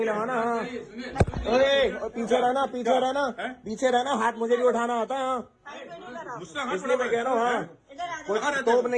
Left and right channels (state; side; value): identical; both; correlation 1.00